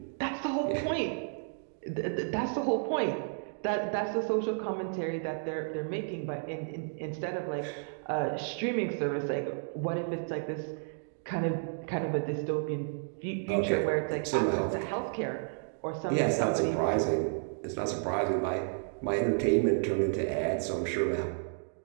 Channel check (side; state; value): left; silent; digital silence